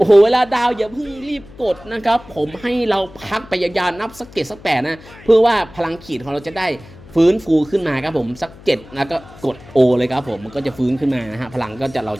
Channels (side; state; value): left; noise; hum, 20 dB below the sound